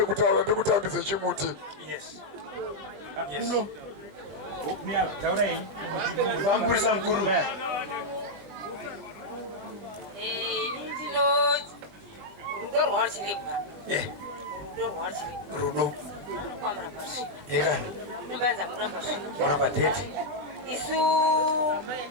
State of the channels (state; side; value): late; left; 20 ms